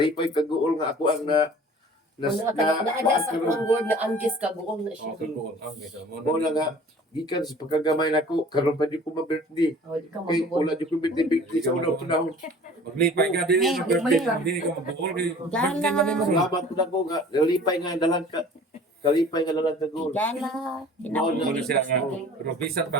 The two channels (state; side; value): normal; both; correlation 0.47